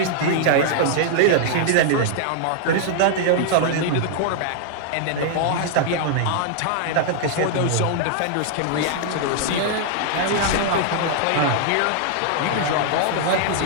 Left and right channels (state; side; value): different; both; correlation -0.01